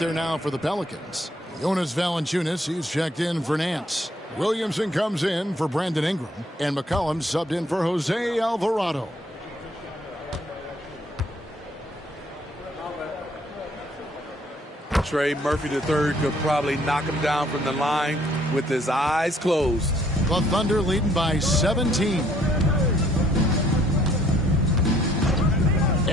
now for the Pelicans. Jonas Valanciunas, he's checked in for Nance. Williamson comes in for Brandon Ingram. And McCollum subbed in for Jose Alvarado. Trey Murphy III could probably knock him down from the line with his eyes closed. The Thunder leading by 17.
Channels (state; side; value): normal; both; correlation 0.64